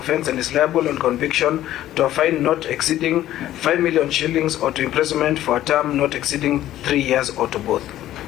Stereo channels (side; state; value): right; quieter; 13.4 dB